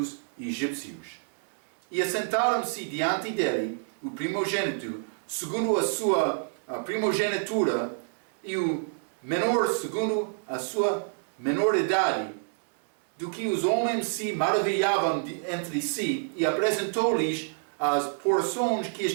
egípcios. E assentaram-se diante dele o primogênito, segundo a sua primogenitura, e o menor segundo a sua menoridade, do que os homens se maravilhavam entre si, e apresentou-lhes as porções que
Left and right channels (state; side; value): silent; left; digital silence